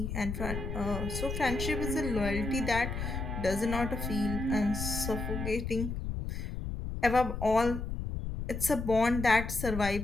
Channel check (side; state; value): left; noise; rumble, 5 dB below the sound